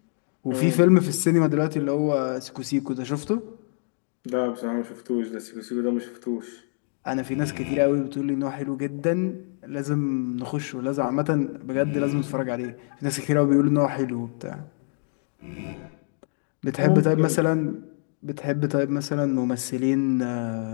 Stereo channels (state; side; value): silent; right; 56 dB below the other